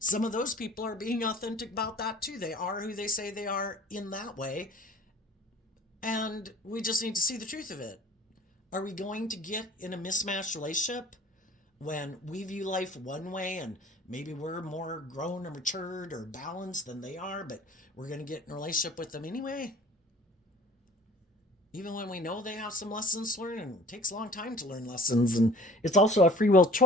of those people are being authentic about that too. They are who they say they are in that way. And we just need to see the truth of it. Are we going to get in a mismatched relationship when we view life one way and maybe we're more grown or matured or balanced than they are, but we're going to get in a relationship with them anyway? Even when we know they have some lessons to learn, and it takes a long time to learn lessons, and it's also a free will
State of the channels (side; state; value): both; normal; correlation 0.48